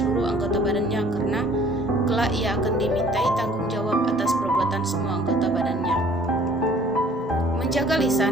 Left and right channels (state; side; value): normal; both; correlation 0.54